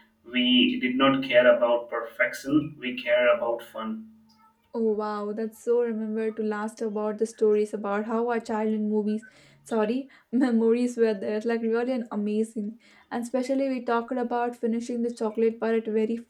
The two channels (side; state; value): both; identical; correlation 1.00